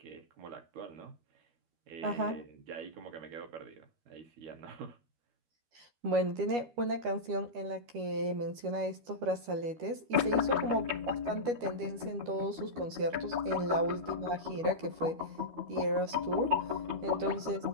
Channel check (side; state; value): left; late; 12 ms